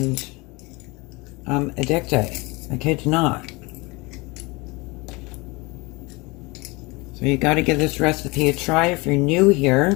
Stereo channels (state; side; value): quieter; right; 25.3 dB